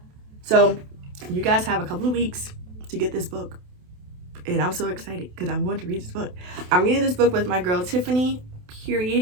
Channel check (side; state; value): left; late; 28 ms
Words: So you guys have a couple of weeks to get this book, and I'm so excited because I'm going to read this book. I'm reading this book with my girl Tiffany.